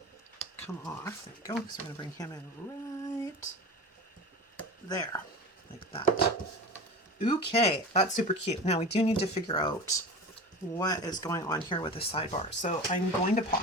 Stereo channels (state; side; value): normal; both; correlation 0.31